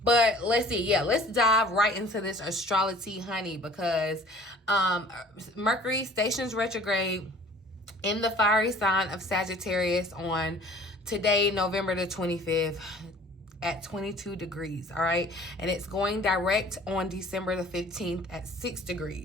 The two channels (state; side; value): normal; both; correlation 0.50